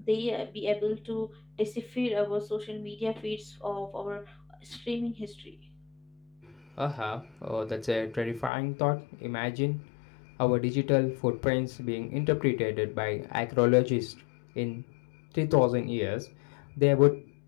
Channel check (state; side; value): drops out; right; at 8.5 s